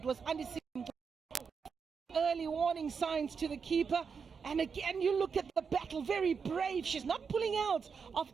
was early warning signs to the keeper. And again, you look at the battle, very brave. She's not pulling out of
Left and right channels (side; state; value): left; quieter; 5.9 dB